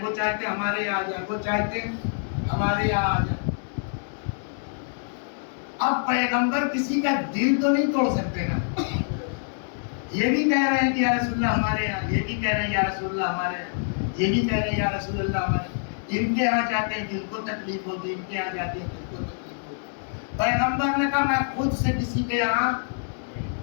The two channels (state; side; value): silent; right; digital silence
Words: وہ چاہتے ہمارے یہاں آ جائے، وہ چاہتے ہمارے یہاں آ جائے. اب پیغمبر کسی کا دل تو نہیں توڑ سکتے نا. یہ بھی کہہ رہے ہیں کہ یا رسول اللہ ہمارے یہاں، یہ بھی کہہ رہے ہیں یا رسول اللہ ہمارے یہاں، یہ بھی کہہ رہے ہیں یا رسول اللہ ہمارے یہاں. ان کے یہاں جاتے ہیں دل کو تکلیف ہوگی، ان کے یہاں جاتے ہیں دل کو تکلیف ہوگی. پیغمبر نے کہا میں خود سے کسی کے یہاں